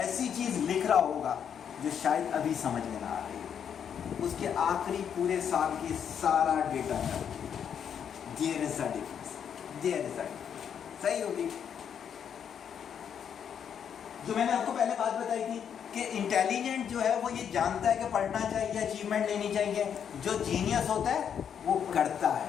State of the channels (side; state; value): right; quieter; 8.1 dB